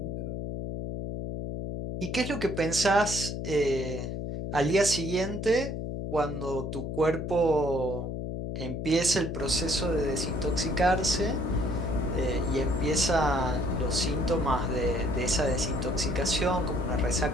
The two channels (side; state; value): left; noise; hum, 4 dB below the sound